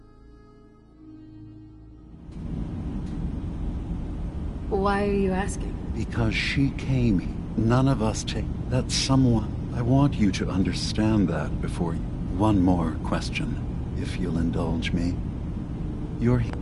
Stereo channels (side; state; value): both; identical; correlation 1.00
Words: Why are you asking? Because she came here. None of us take... That someone... I want you to understand that before you... One more question, if you'll indulge me. You're here.